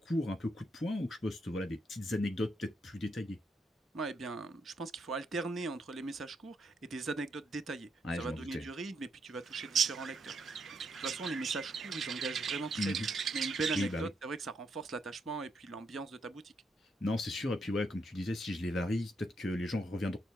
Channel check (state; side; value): normal; both; correlation 0.78